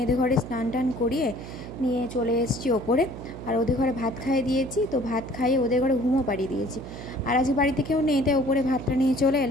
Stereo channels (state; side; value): noise; right; hum, 11 dB below the sound